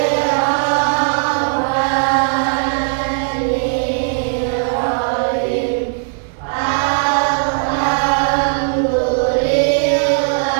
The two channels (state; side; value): silent; left; 67 dB below the other